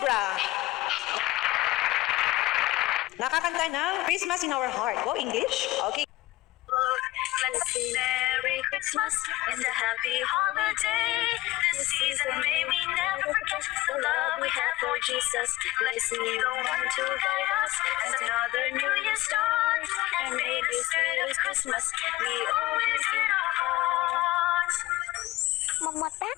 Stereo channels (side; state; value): right; quieter; 17.7 dB